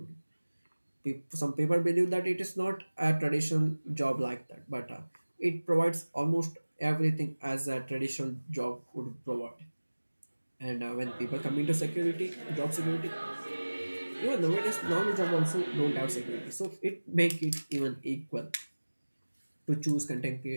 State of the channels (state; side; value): inverted; both; correlation -1.00